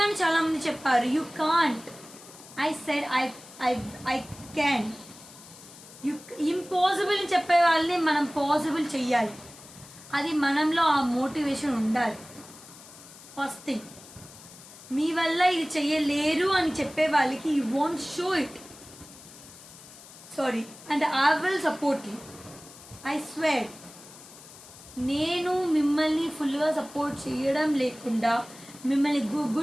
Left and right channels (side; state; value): left; noise; hiss, 19 dB below the sound